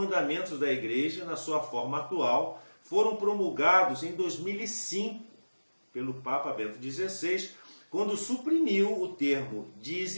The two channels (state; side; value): inverted; both; correlation -1.00